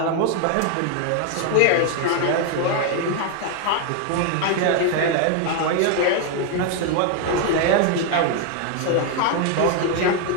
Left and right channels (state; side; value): different; both; correlation 0.01